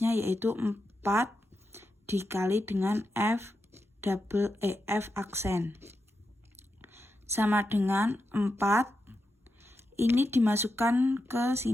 yaitu 4 dikali dengan f aksen. Sama dengan 4, ini dimasukkan ke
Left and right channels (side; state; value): both; normal; correlation 0.87